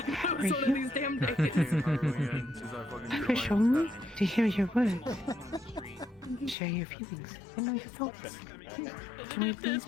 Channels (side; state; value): right; drops out; at 6.6 s